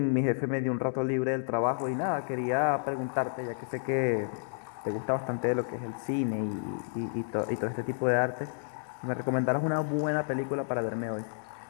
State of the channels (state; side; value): silent; right; digital silence